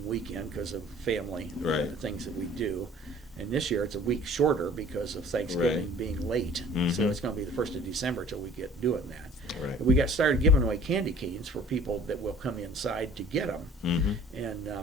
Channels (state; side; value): normal; both; correlation 0.50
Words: weekend because of family things that we do. And this year it's a week shorter because of Thanksgiving being late. So it's going to be the 1st of December till we get doing that. Right. We got started giving away candy canes for people that will come inside to get them,